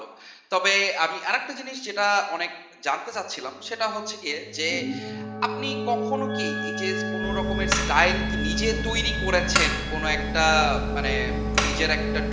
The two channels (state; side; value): identical; both; correlation 1.00